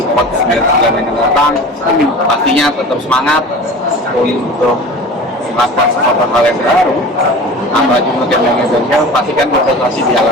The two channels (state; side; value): normal; both; correlation 0.37